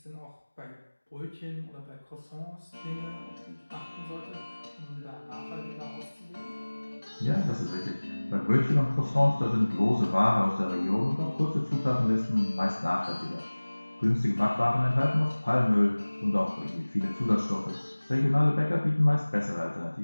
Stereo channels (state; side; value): inverted; both; correlation -1.00